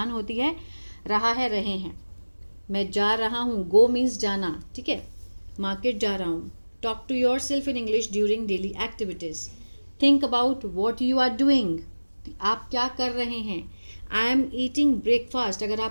होती है रहा है, रहे हैं। मैं जा रहा हूँ, गो मीन्स जाना, ठीक है। मार्केट जा रहा हूँ। Talk to yourself in English during daily activities. Think about what you are doing, आप क्या कर रहे हैं. आई एम ईटिंग ब्रेकफास्ट, अगर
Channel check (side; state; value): both; inverted; correlation -1.00